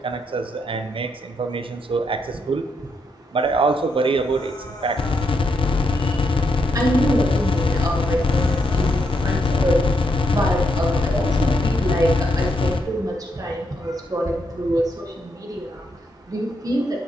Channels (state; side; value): normal; both; correlation 0.79